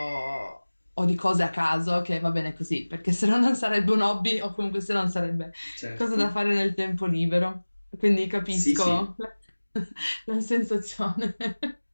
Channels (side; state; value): both; inverted; correlation -1.00